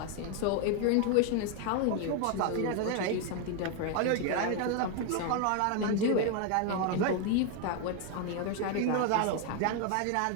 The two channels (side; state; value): both; different; correlation 0.01